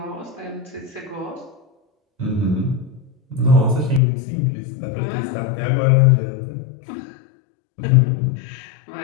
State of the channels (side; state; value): right; drops out; at 4.0 s